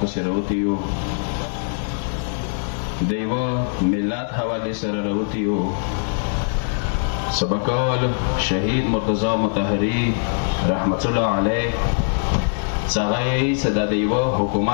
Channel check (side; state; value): right; silent; digital silence